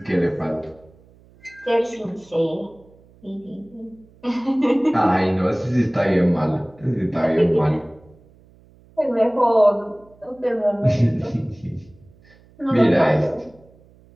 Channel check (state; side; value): noise; right; hum, 28 dB below the sound